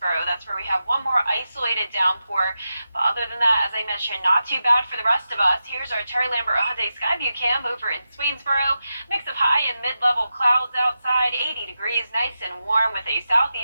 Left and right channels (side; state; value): both; inverted; correlation -0.90